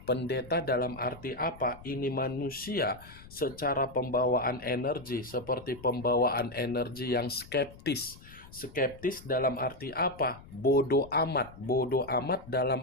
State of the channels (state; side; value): noise; left; rumble, 19 dB below the sound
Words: Pendeta dalam arti apa? Ini manusia secara pembawaan energi, seperti pembawaan energi yang skeptis. Skeptis dalam arti apa? Bodoh amat. Bodoh amat